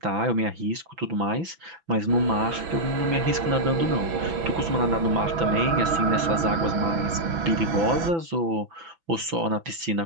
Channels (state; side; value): late; left; 6.0 ms